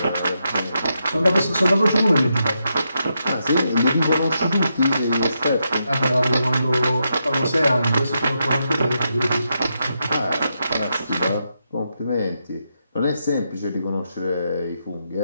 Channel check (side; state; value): both; inverted; correlation -0.83